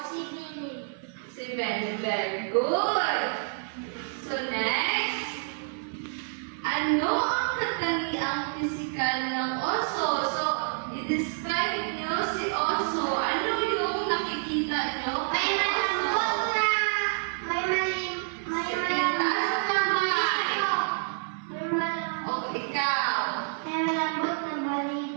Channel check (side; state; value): left; silent; 57 dB below the other